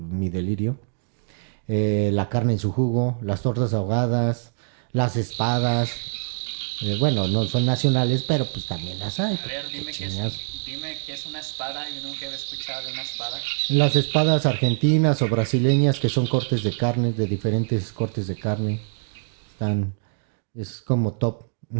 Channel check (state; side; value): silent; left; digital silence